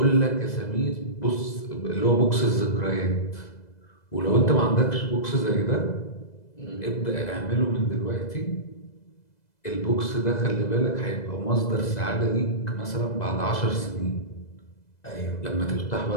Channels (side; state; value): right; late; 2.0 ms